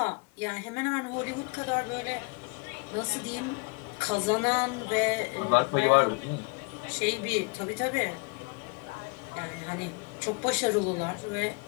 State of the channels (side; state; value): right; quieter; 31.3 dB